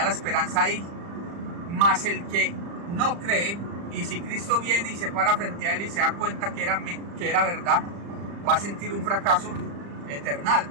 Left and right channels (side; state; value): left; late; 35 ms